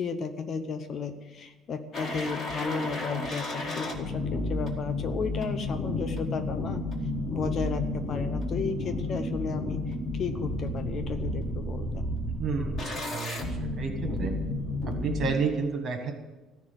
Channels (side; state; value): both; normal; correlation 0.62